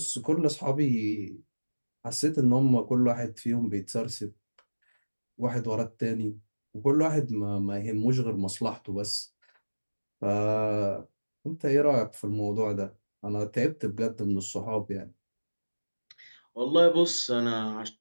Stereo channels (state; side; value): inverted; both; correlation -1.00